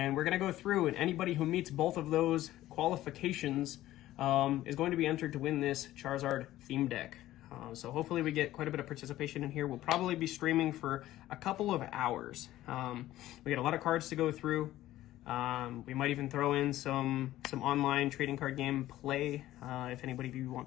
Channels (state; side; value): quieter; right; 14.8 dB